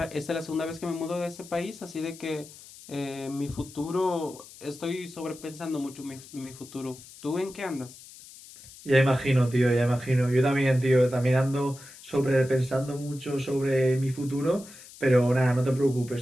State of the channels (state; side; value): noise; left; hiss, 19 dB below the sound